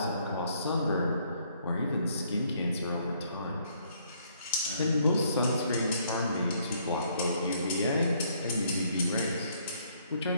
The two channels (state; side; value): inverted; both; correlation -0.67